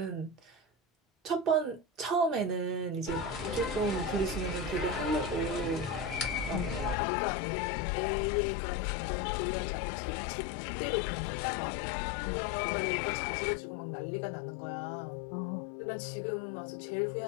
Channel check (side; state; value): right; drops out; at 7.0 s